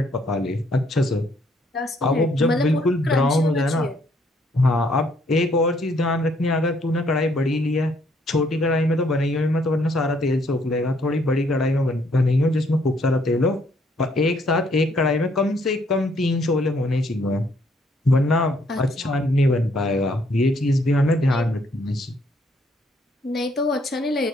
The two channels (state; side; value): normal; both; correlation 0.68